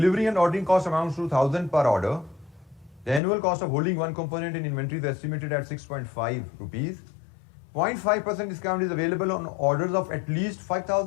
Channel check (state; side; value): drops out; right; at 3.2 s